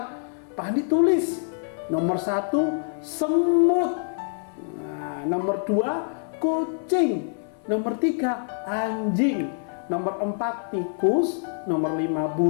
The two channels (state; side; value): silent; right; 57 dB below the other